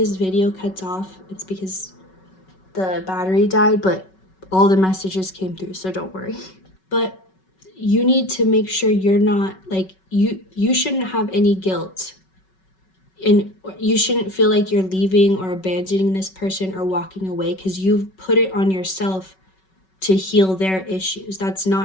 video cuts off, it's because the battery died, but all the messages came through, so don't worry. But you need to make sure you're not like, you shouldn't have any guilt, and you shouldn't feel like you're leaving or abandoning this person or walking away, because you've put it on yourself to heal their issues. That's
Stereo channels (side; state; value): right; late; 5.3 ms